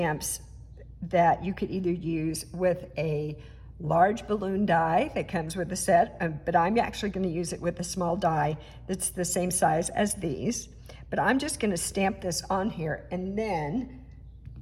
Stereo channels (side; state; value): both; identical; correlation 1.00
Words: that you could either use with a large balloon die that comes with the set, but I'm actually going to use it with a small die that's the same size as these. But I'm just going to stamp this on here and then